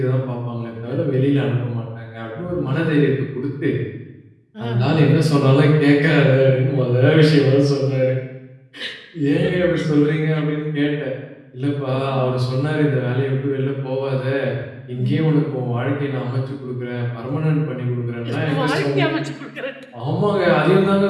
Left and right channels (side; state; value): both; identical; correlation 1.00